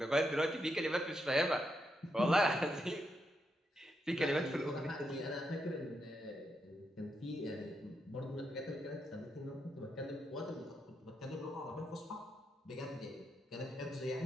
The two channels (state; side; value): normal; both; correlation 0.82